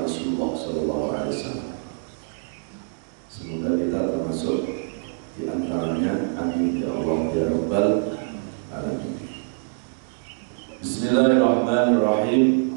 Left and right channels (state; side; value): silent; left; digital silence